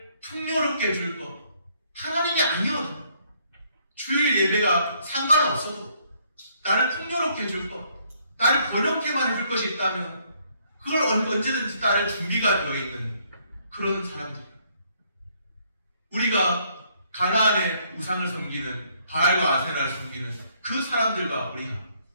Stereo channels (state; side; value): inverted; both; correlation -0.68